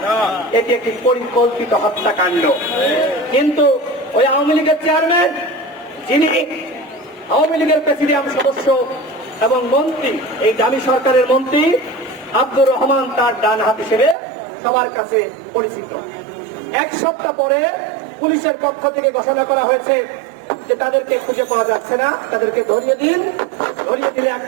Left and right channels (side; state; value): left; drops out; at 14.2 s